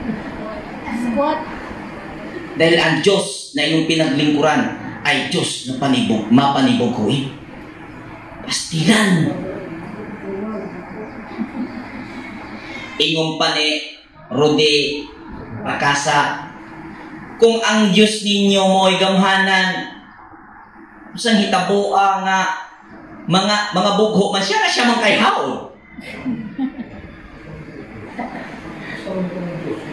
Squat. Dahil ang Diyos na iyong pinaglingkuran ay Diyos na mapanibuguin. Pastilan. Ingong pa ni Rudy Rakasa, kung ang Diyos ninyo mo'y gamhanan, usang hitaboa nga mga bugho man siya na siya man kay haon.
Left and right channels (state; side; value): identical; both; correlation 1.00